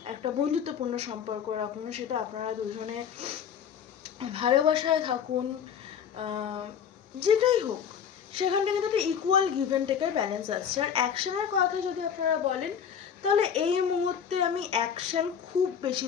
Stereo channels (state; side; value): quieter; right; 7.9 dB